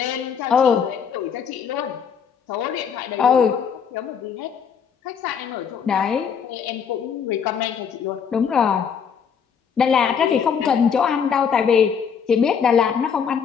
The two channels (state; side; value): quieter; right; 7.0 dB